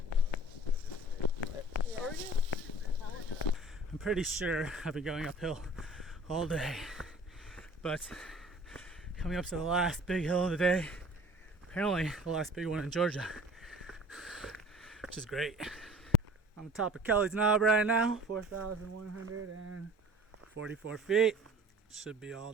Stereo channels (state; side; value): normal; both; correlation 0.45